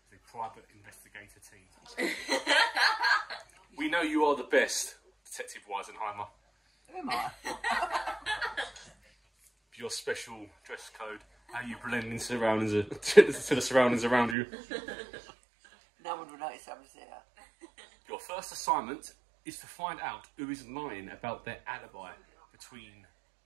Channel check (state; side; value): drops out; left; at 14.4 s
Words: a private investigator team. We know you are the best, Detective Weisenheimer. Am I? Your special dress code, how you blend into surroundings, to the surroundings around you. No one would notice I was there. Your first assignment is to find out who is lying about their alibi between